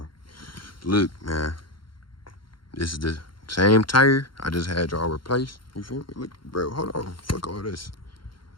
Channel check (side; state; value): right; late; 0.73 ms